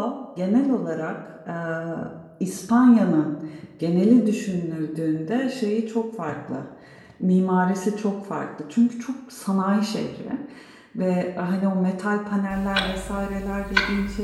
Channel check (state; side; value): identical; both; correlation 1.00